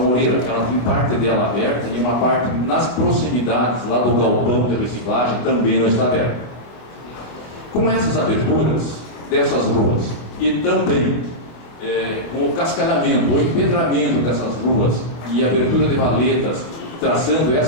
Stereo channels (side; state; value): right; late; 24 ms